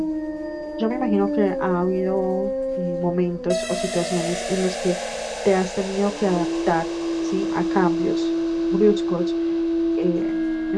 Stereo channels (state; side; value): identical; both; correlation 1.00